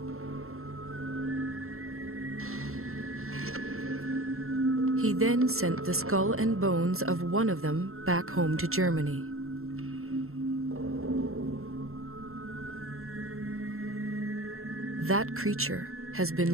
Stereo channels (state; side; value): late; left; 0.62 ms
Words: He then sent the skull and bones of one of them back home to Germany. That creature has